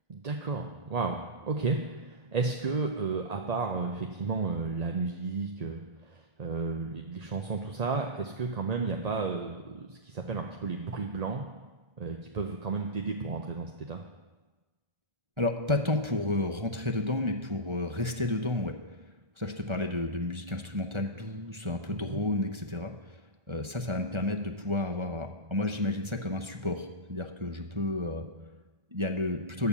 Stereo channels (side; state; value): left; late; 1.3 ms